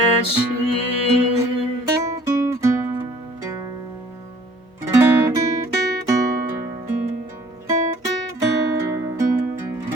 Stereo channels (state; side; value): normal; both; correlation 0.55